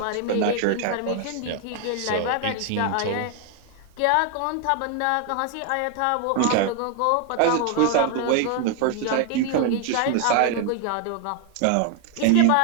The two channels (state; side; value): different; both; correlation 0.00